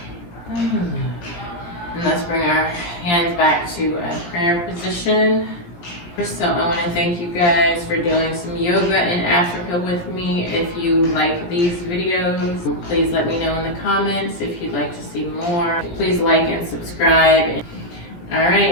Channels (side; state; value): right; late; 17 ms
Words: And let's bring our hands back to a prayer position. So I want to thank you guys for doing some yoga in Africa with me. If you like these videos, please let me know in the comments. If you'd like to see more, please like and subscribe. All